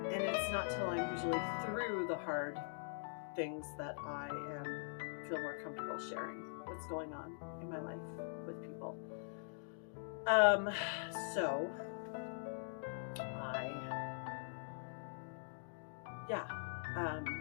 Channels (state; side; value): silent; right; digital silence